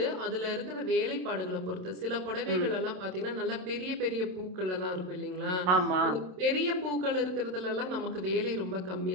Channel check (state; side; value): late; left; 27 ms